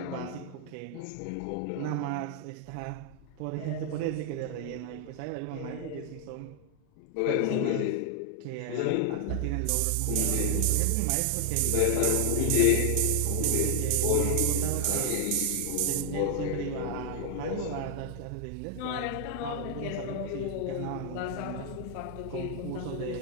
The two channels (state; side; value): different; both; correlation 0.00